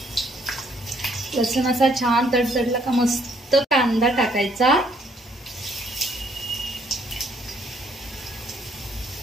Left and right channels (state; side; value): normal; both; correlation 0.67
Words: लसूण असा छान तडतडला का मस्त कांदा टाकायचा।